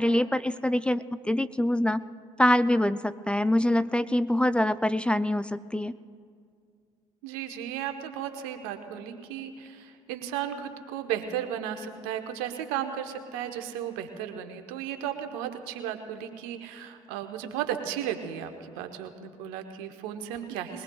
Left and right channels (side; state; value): both; normal; correlation 0.78